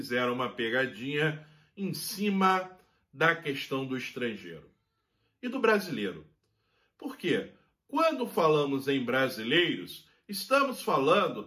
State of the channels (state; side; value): identical; both; correlation 1.00